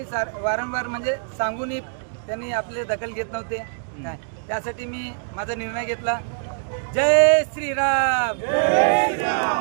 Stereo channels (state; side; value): silent; left; digital silence